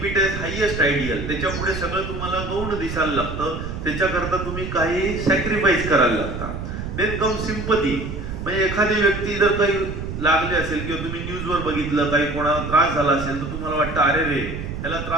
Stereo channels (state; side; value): noise; right; rumble, 7 dB below the sound